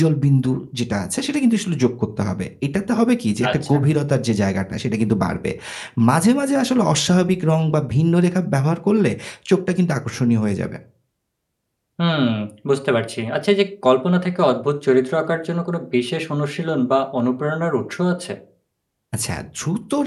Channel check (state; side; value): identical; both; correlation 1.00